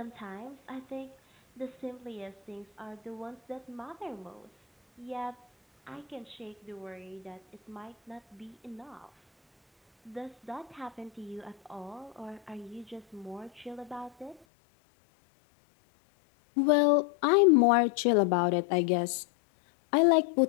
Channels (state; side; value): drops out; right; at 14.4 s